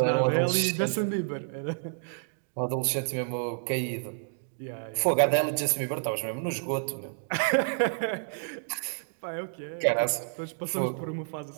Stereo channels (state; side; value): silent; left; digital silence